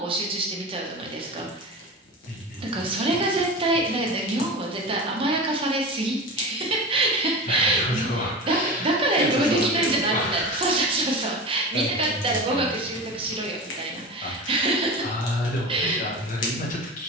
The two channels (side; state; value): both; normal; correlation 0.29